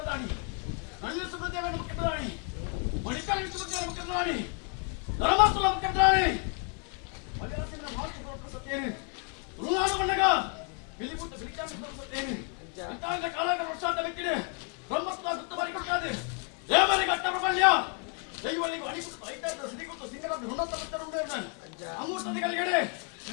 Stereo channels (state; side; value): quieter; right; 38.3 dB